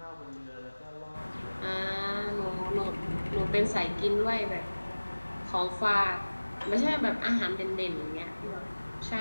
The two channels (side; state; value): both; inverted; correlation -1.00